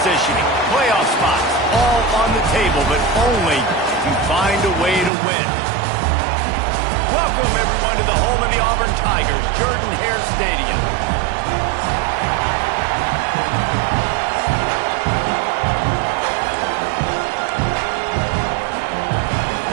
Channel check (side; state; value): left; drops out; at 5.1 s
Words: playoff spots, all on the table, but only to find a way to win. Welcome, everyone, to the home of the Auburn Tigers, Jordan-Hare Stadium.